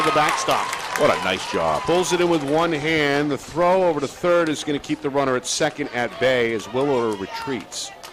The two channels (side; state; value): both; identical; correlation 1.00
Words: the backstop. What a nice job. Pulls it in with one hand. The throw over to third is going to keep the runner at second at bay as Willer retreats.